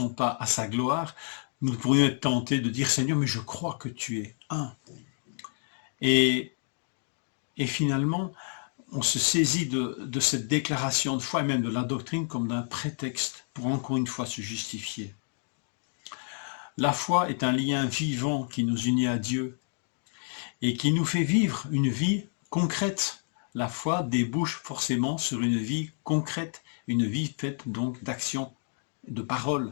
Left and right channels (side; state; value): right; silent; 58 dB below the other